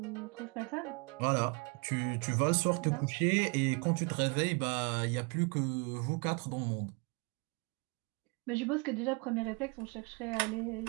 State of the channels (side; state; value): left; quieter; 31.6 dB